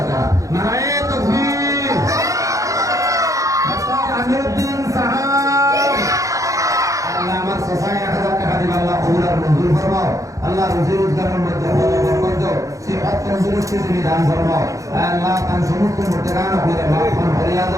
নারায়ে তাকবীর ডাক্তার আমিরউদ্দিন সাহেব আল্লাহ আমার সফায় 1000 টাকা দিবা আল্লাহ কবুল আর মঞ্জুর ফরমাও আল্লাহ রুজি রোজগারের মধ্যে বরকত দাও সিহত তন্দুরুস্তি তুমি দান ফরমাও আল্লাহ তার সমস্ত মুর্জাগান আপনারে মাফ করিয়া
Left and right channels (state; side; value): late; left; 0.16 ms